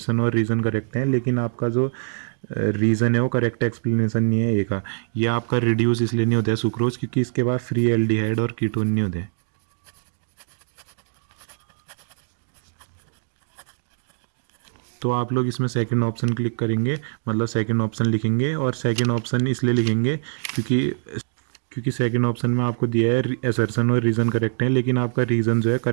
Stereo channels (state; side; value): silent; left; digital silence